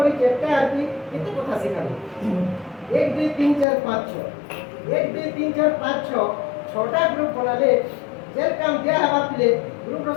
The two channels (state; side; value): drops out; right; at 3.7 s